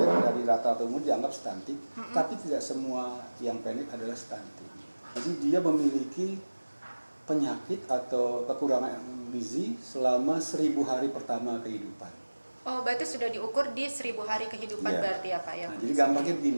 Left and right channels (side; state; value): both; inverted; correlation -1.00